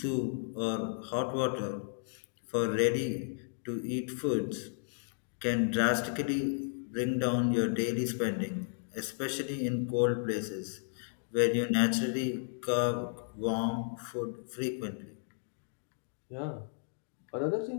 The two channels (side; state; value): right; silent; digital silence